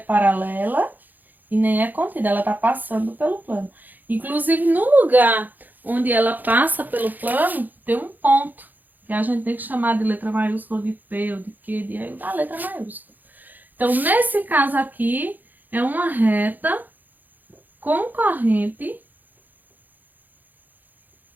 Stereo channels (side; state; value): left; late; 0.085 ms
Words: e nem é contida, ela tá passando pelo plano. Inclusive, no lugar onde ela passa pelo plano, tem um ponto, que a gente tem que chamar de letra maiúscula, de P ou de Q, da letra maiúscula. Então, nesse caso aqui, é uma reta concorrente